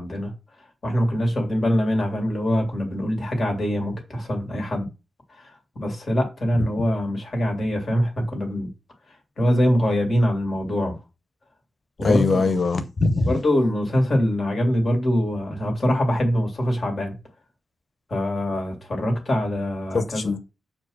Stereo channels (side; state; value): both; normal; correlation 0.93